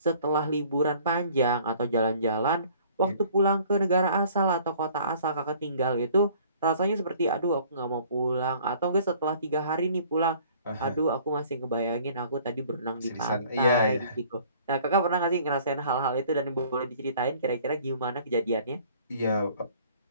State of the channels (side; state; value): both; inverted; correlation -0.54